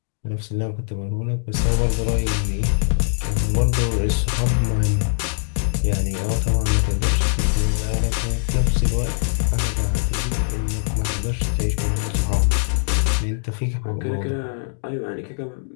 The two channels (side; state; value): right; silent; digital silence